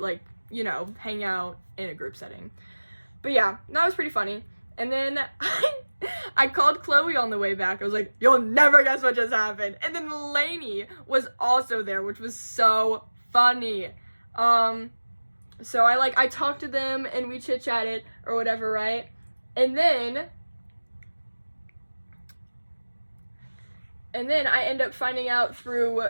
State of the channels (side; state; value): both; inverted; correlation -1.00